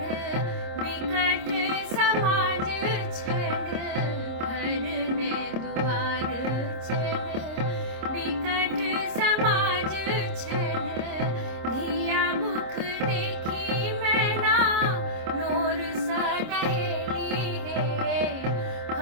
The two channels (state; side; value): late; left; 26 ms